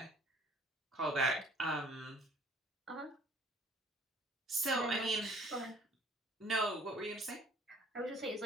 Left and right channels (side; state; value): both; normal; correlation 0.56